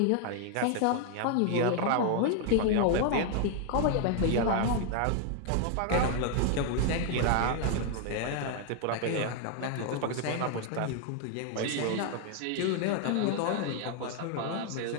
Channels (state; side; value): different; both; correlation 0.00